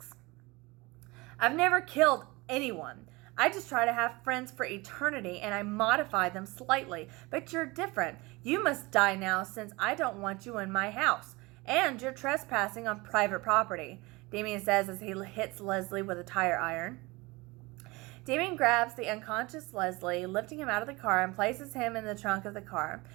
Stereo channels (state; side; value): quieter; left; 23.6 dB